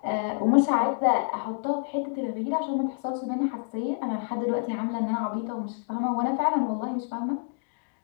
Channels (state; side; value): silent; right; digital silence